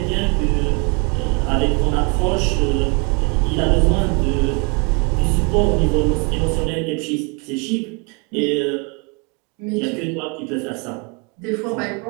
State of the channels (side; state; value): left; quieter; 32.1 dB